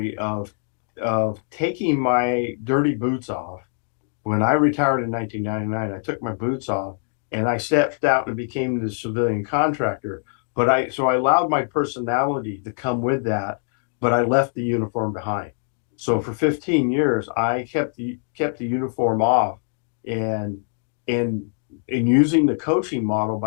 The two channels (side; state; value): right; silent; 63 dB below the other